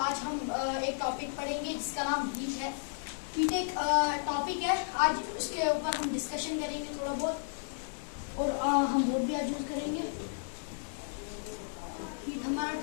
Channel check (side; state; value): right; silent; digital silence